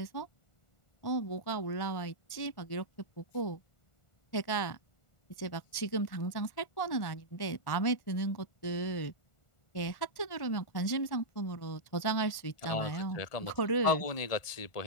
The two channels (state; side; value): late; right; 1.4 ms